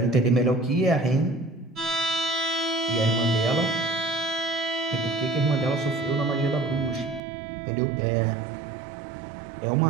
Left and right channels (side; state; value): left; drops out; at 7.2 s